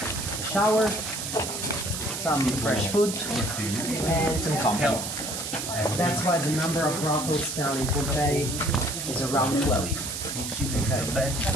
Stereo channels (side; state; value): right; noise; hiss, 5 dB below the sound